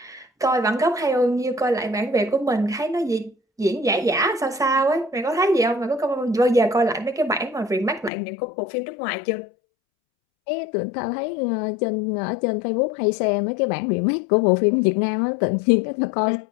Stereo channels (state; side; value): drops out; right; at 8.1 s